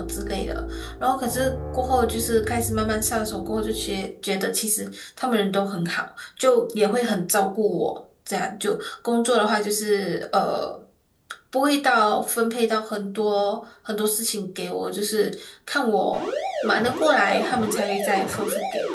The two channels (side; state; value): both; identical; correlation 1.00